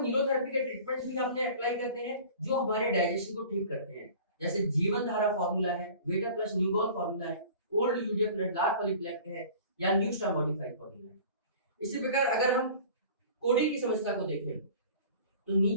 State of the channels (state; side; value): inverted; both; correlation -0.43